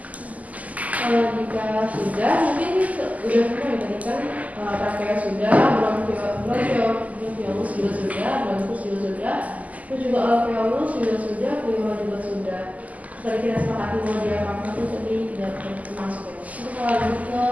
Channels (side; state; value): left; late; 0.075 ms